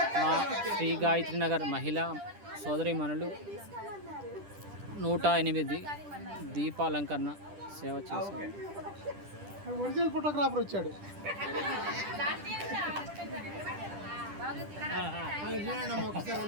మా శ్రీ గాయత్రి నగర్ మహిళా సోదరీమణులు 108 దీపాలంకరణ సేవ చేశారు. ఒరిజినల్ ఫోటోగ్రాఫర్ వచ్చాడు.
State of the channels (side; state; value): left; late; 10 ms